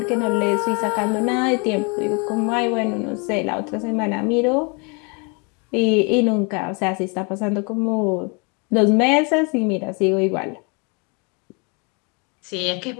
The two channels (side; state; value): right; quieter; 32.9 dB